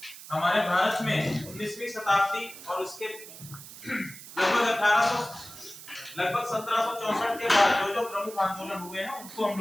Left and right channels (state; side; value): noise; right; hiss, 15 dB below the sound